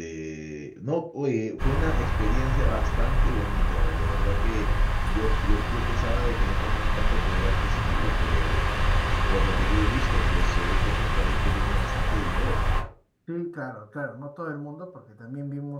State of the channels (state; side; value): identical; both; correlation 1.00